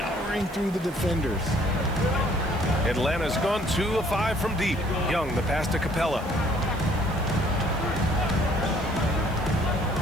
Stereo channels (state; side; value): noise; right; hiss, 23 dB below the sound